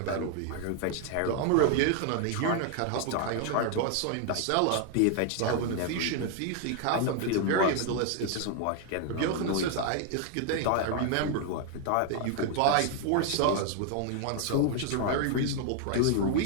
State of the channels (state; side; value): different; both; correlation 0.00